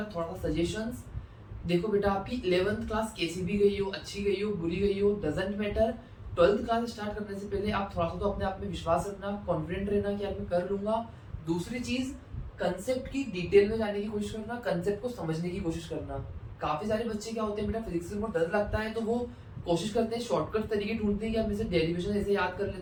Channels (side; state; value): both; identical; correlation 1.00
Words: थोड़ा सा सजेशंस। देखो बेटा, आपकी 11th क्लास कैसी भी गई हो, अच्छी गई हो, बुरी गई हो, doesn't matter. 12th class start करने से पहले आप थोड़ा सा तो अपने आप में विश्वास रखना, कॉन्फिडेंट रहना कि यार मैं कर लूंगा। दूसरी चीज, कंसेप्ट की डिटेल में जाने की कोशिश करना, कंसेप्ट को समझने की कोशिश करना। काफी सारे बच्चे क्या होते हैं बेटा, फिजिक्स में बहुत डर लगता है तो वो कोशिश करते हैं, शॉर्टकट तरीके ढूंढते हैं कि यार मैं डेरिवेशन ऐसे याद कर